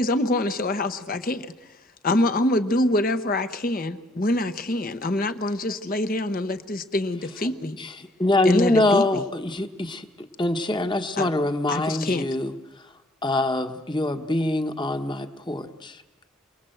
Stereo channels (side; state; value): both; normal; correlation 0.63